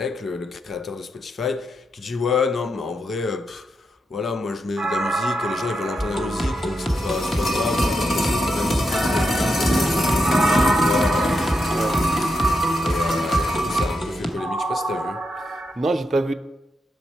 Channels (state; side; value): normal; both; correlation 0.84